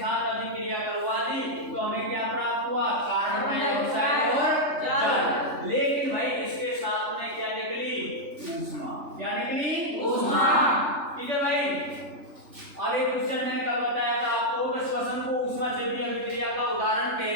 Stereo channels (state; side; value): late; left; 3.4 ms